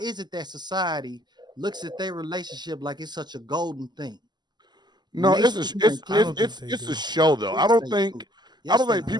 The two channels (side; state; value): left; late; 0.21 ms